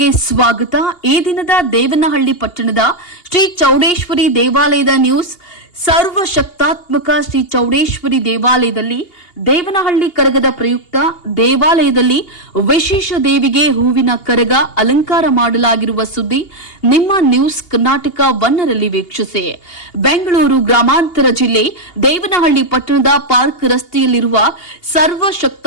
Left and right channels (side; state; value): right; late; 2.8 ms